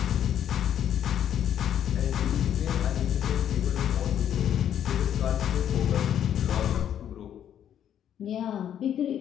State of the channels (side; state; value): right; quieter; 9.9 dB